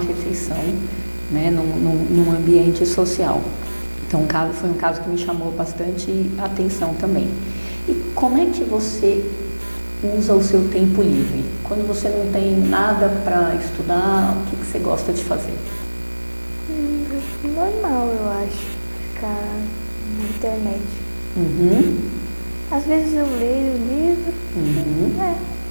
né, num ambiente social. Então foi um caso que me chamou bastante atenção também. E como é que você usa o seu tempo livre? Quando você não tem nada para estudar, o que você gosta de fazer? Normal, eu acho, ficar na internet. Uhum. Às vezes eu leio livro. Uhum.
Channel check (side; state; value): both; inverted; correlation -1.00